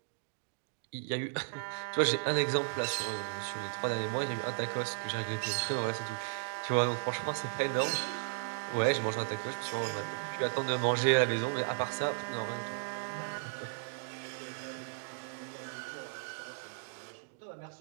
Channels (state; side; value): silent; left; digital silence